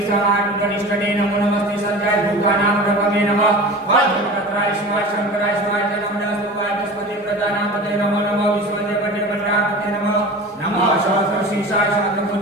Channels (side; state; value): both; normal; correlation 0.35